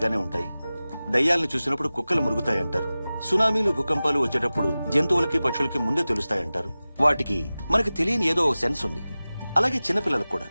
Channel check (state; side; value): inverted; both; correlation -0.97